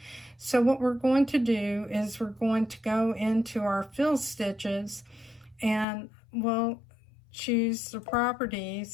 So what we're going to do is we're going to go into our fill stitches and we'll choose the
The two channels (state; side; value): drops out; right; at 5.9 s